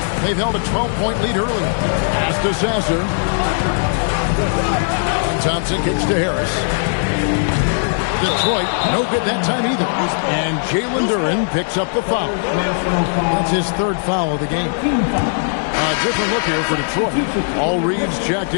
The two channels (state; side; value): silent; right; digital silence